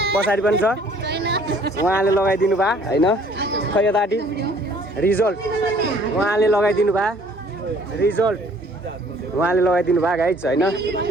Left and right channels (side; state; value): both; normal; correlation 0.57